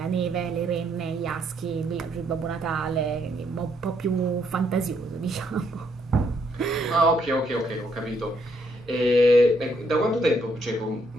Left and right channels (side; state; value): both; normal; correlation 0.73